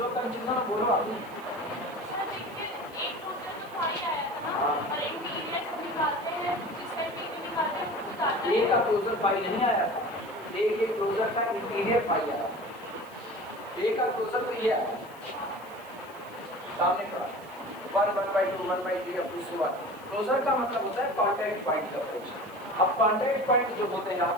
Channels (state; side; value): noise; right; hiss, 24 dB below the sound